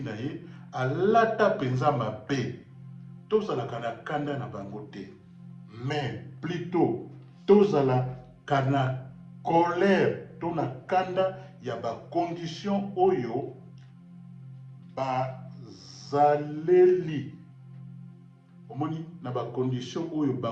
na ye alata mpenza mabe tozalaka na kanda na bango te mais plutôt tozalaka na colère to na kanda ya bacondition oyo bazaleli omoni na bacondition oyo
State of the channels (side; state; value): both; identical; correlation 1.00